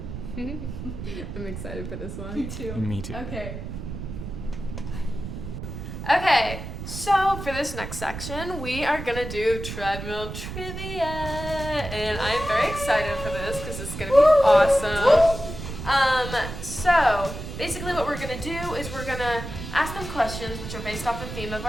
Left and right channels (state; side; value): noise; right; rumble, 8 dB below the sound